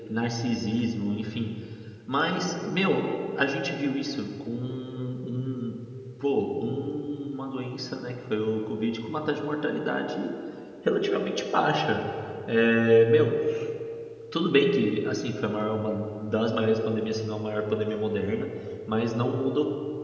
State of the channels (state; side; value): identical; both; correlation 1.00